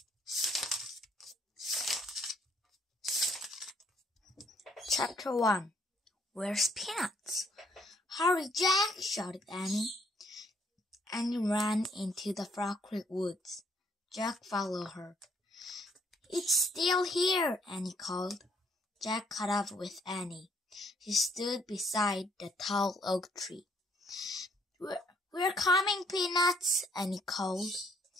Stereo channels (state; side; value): normal; both; correlation 0.67